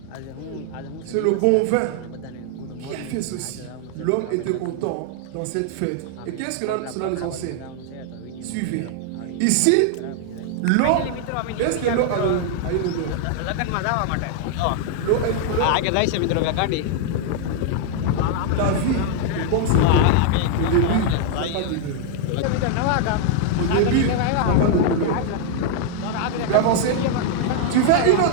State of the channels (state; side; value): different; both; correlation 0.00